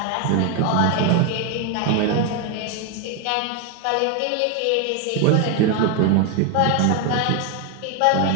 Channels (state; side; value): different; both; correlation 0.01